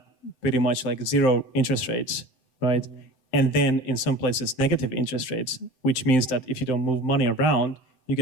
pretty much like zero interest rates, right? And then in some places, negative interest rates, which means that if you don't move money around, you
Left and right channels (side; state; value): right; late; 7.8 ms